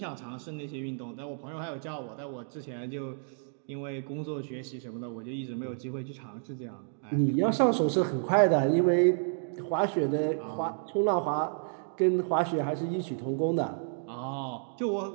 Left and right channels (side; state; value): left; silent; digital silence